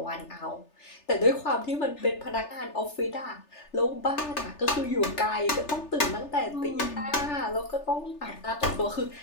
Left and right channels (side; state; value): right; late; 3.4 ms